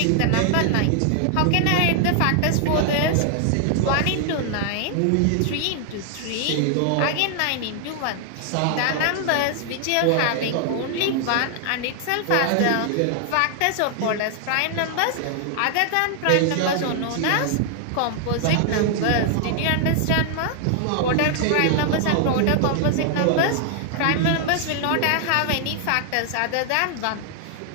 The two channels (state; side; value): different; both; correlation 0.00